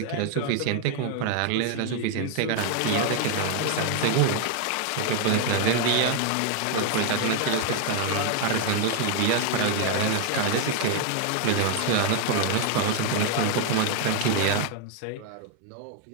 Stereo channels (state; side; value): different; both; correlation 0.00